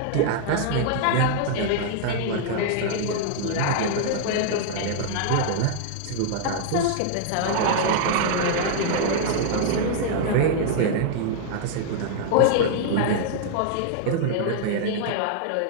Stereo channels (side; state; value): both; different; correlation -0.01